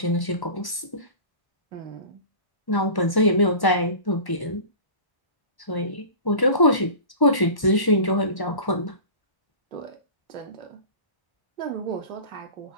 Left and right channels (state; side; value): late; right; 1.1 ms